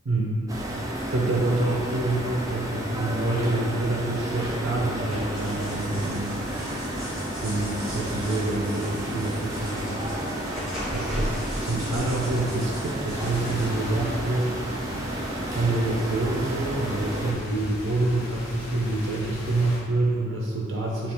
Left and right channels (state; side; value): normal; both; correlation 0.66